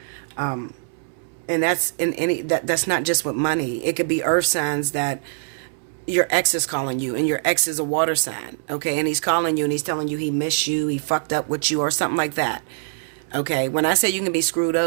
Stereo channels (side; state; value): left; silent; 63 dB below the other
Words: And that's in any, that's not just with money. It could be earth signs that your ex is calling you, and your ex is a water sign, okay? And he's calling you, and he's telling you he missed you, he fucked up with you, or something like that. Okay, when I say you can be screwed